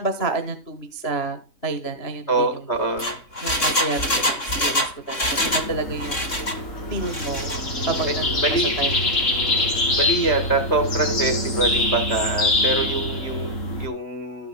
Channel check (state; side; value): late; right; 3.6 ms